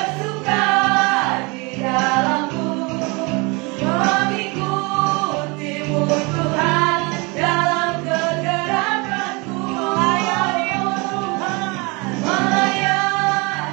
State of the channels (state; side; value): quieter; left; 28.0 dB